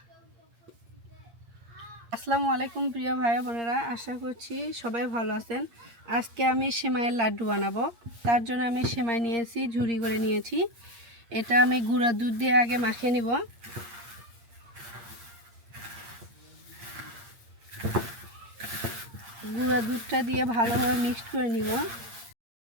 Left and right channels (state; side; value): late; left; 8.6 ms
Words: আসসালামু আলাইকুম প্রিয় ভাই বোনেরা, আশা করছি সবাই ভালো আছেন। আজকে আমি সেমাইয়ের লাড্ডু বানাবো। তার জন্য আমি সেমাই নিয়েছি, ঝুরি করে নিয়েছি। এটা আমি গুঁড়া দুধ দিয়ে আগে মাখিয়ে নিব। গুঁড়া দুধটা দিয়ে ভালোভাবে মিক্সড করে নিব।